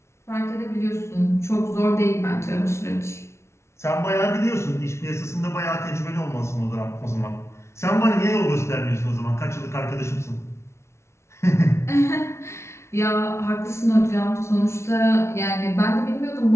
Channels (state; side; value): late; right; 0.13 ms